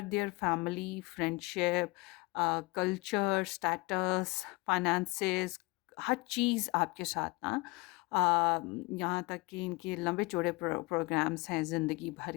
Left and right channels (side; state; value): right; quieter; 24.5 dB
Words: their family, friendship, culture, status, finances, हर चीज़ आपके साथ ना, यहाँ तक कि इनके लंबे चौड़े प्रोग्राम्स हैं ज़िंदगी भर